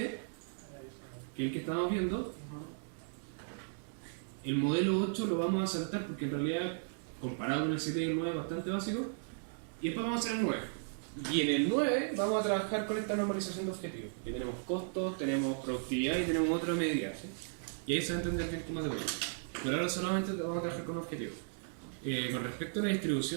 que es el que estamos viendo. El modelo 8 lo vamos a saltar porque en realidad, comparado con el 7 y el 9, es bastante básico. Y después vamos a hacer el 9. Y en el 9 vamos a trabajar con esta normalización de objetivos. Aquí tenemos costos, tenemos productividad y tenemos otra medida, ¿sí? Y ahí se va a entender bien cómo es de bueno. Pero ahora solamente vamos a trabajar con objetivos. Con respecto a la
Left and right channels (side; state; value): left; silent; digital silence